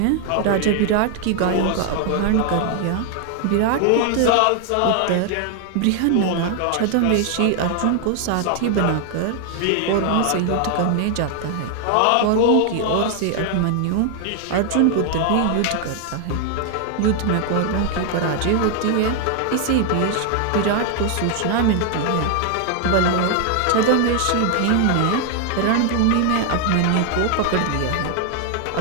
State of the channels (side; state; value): both; different; correlation 0.00